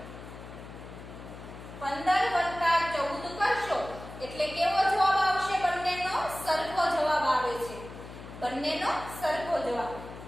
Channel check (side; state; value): left; noise; hum, 14 dB below the sound